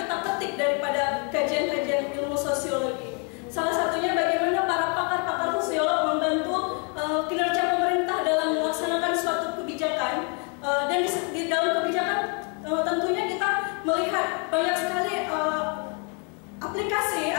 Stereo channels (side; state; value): right; quieter; 36.8 dB